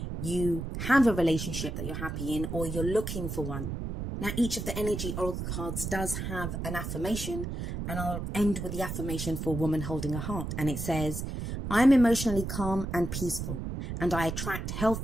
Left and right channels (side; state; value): right; noise; rumble, 5 dB below the sound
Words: you have a relationship that you're happy in or you're looking for one. Now, each of the energy oracle cards does have an affirmation, and I'll end with the affirmation for woman holding a heart. And it says, I'm emotionally calm and peaceful, and I attract